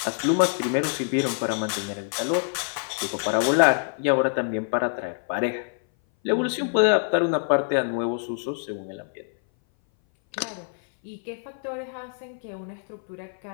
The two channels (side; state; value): right; silent; 58 dB below the other